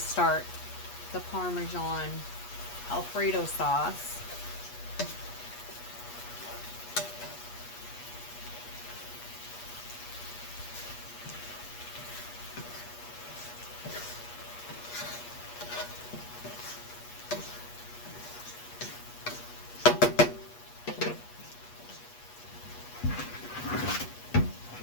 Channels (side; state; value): right; late; 8.4 ms